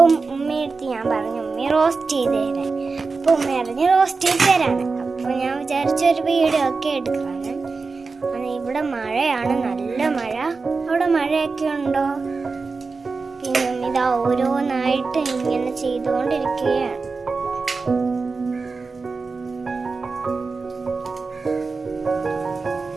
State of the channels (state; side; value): quieter; left; 4.3 dB